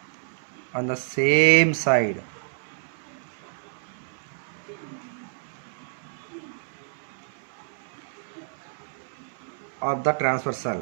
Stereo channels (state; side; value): silent; left; 59 dB below the other